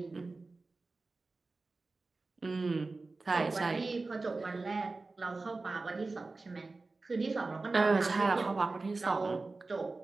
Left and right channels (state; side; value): quieter; left; 3.6 dB